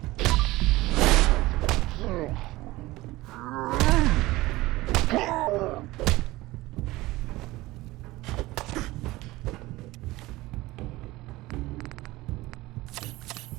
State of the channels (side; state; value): left; quieter; 19.1 dB